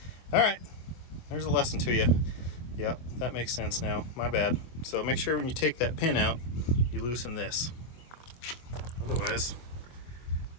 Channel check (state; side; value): late; right; 25 ms